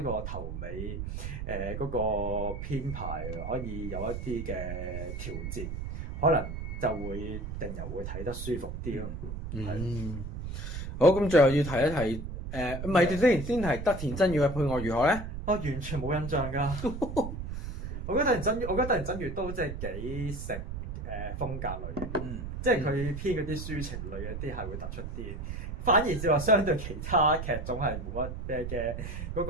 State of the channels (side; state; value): right; noise; rumble, 6 dB below the sound